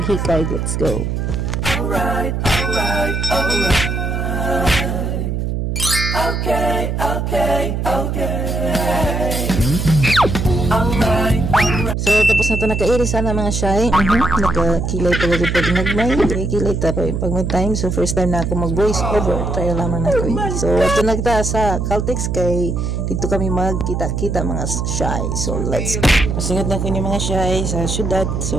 Let's go. Alright. Okay. So tapos na to nakairi sana mga shy. Nakakilay pa rin pag nagmay. Kilay ta pa pag may time. So first time na ako mag voice over. Try lamang na ko. So ito nagta sa Caltex kay dito kami magkita-kita mga shy. So let's go. Pasingad na ko ni mga shy sa syudad.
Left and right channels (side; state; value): right; noise; hum, 1 dB below the sound